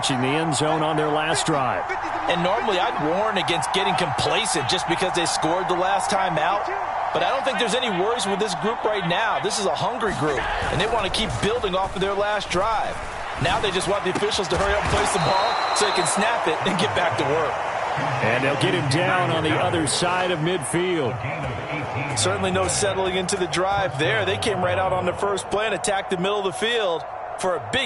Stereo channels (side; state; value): both; identical; correlation 1.00